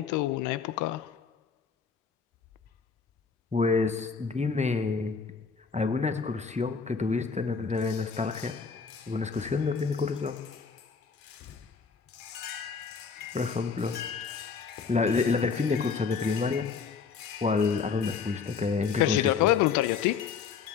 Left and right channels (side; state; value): right; quieter; 5.7 dB